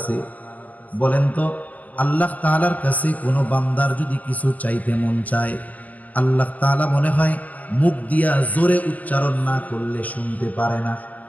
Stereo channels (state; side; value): late; right; 0.077 ms